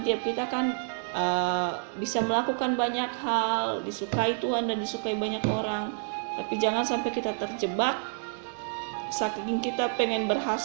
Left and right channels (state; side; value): silent; left; digital silence